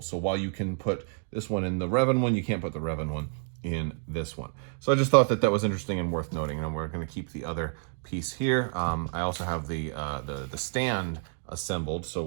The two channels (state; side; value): silent; left; 58 dB below the other